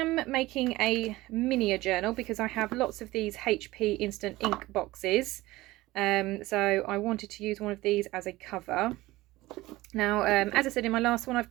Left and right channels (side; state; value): left; quieter; 18.6 dB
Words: making a mini journal because I have lots of these HP instant ink boxes, so I wanted to use one of these as a cover. Now, as I said in my last one, I've